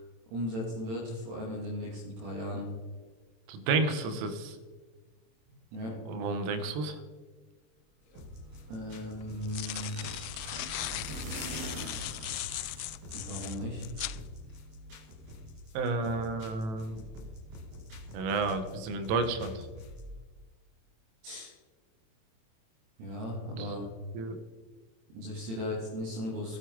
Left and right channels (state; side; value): late; left; 27 ms